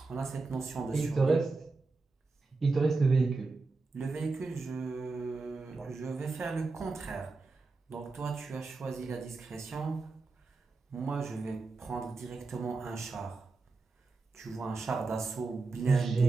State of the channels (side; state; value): left; quieter; 3.9 dB